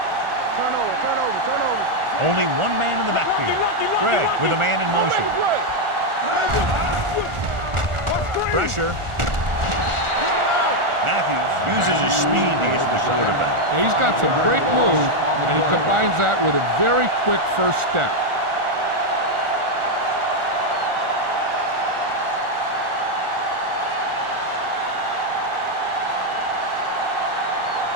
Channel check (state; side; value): late; left; 1.4 ms